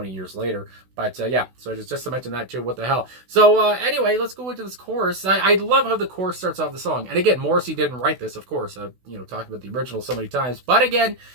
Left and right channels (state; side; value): late; left; 16 ms